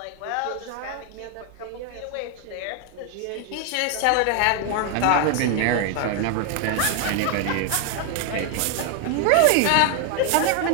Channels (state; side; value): different; both; correlation 0.01